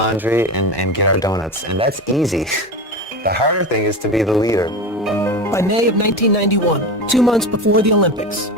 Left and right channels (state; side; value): normal; both; correlation 0.24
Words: and get our donuts. And that's easy. The harder thing is to be the leader. By May of 1991, 2 months before the Olympics,